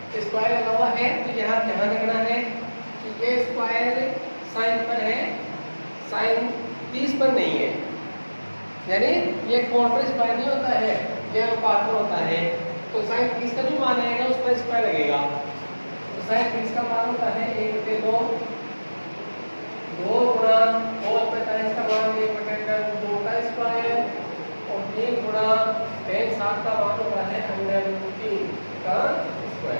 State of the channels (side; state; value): both; inverted; correlation -1.00